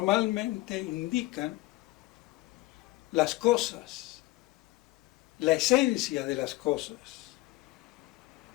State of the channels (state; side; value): quieter; right; 19.3 dB